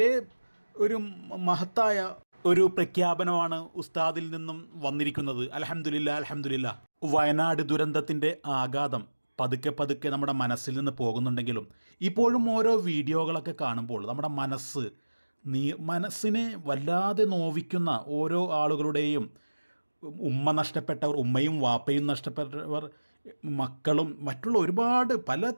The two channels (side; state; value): both; inverted; correlation -1.00